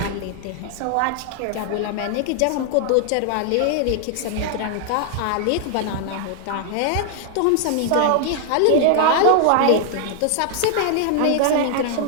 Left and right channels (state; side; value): different; both; correlation 0.00